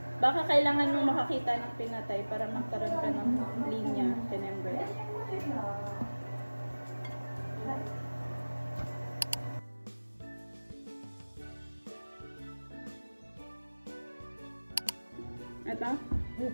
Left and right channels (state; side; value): inverted; both; correlation -1.00